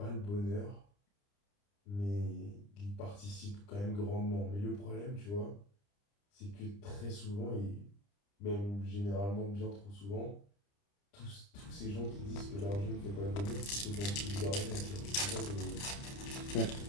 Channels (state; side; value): late; right; 30 ms